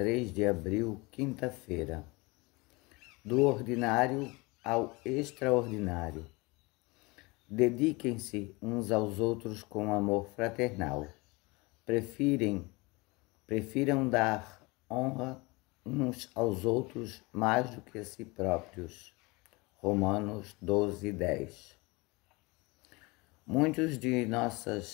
de abril, quinta-feira. Do ordinário ao extraordinário. Dediquem-se uns aos outros com amor fraternal. Prefiram dar honra uns aos outros mais do que a si próprios. Romanos 12:10. Muitos de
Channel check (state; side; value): quieter; right; 25.1 dB